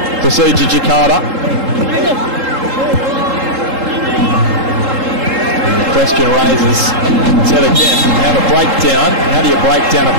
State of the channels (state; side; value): late; left; 3.7 ms